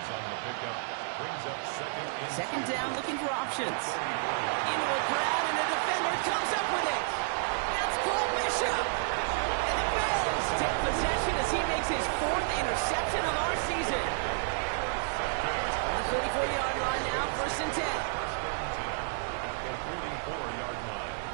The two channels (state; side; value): silent; left; digital silence